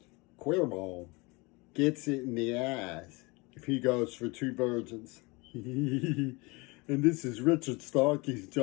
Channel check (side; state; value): right; quieter; 26.1 dB